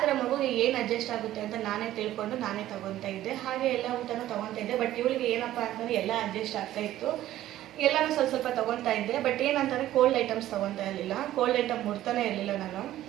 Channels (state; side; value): quieter; left; 13.8 dB